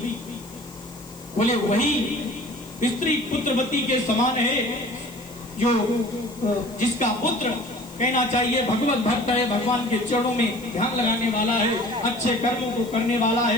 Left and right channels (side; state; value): left; noise; hiss, 22 dB below the sound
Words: बोले वही स्त्री पुत्रवती के समान है जो जिसका पुत्र कहना चाहिए भगवत भक्त है, भगवान के चरणों में ध्यान लगाने वाला है, अच्छे कर्मों को करने वाला